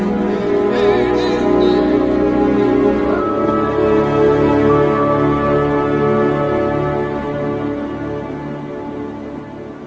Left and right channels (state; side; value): identical; both; correlation 1.00